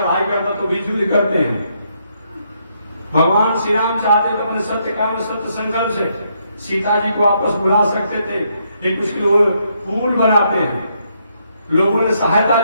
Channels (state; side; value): inverted; both; correlation -0.75